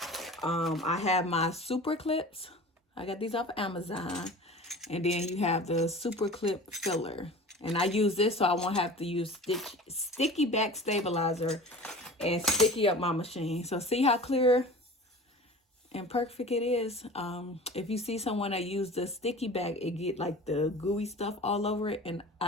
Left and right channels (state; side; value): normal; both; correlation 0.38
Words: I have my super clips. I got these off of Amazon. And then you have the super clip filler. And I use this so I won't have to use sticky back stabilizer and sticky up my machine. So see how clear and perfect it is. If you see someone that use the sticky back, it get like the gooey stuff all over it. And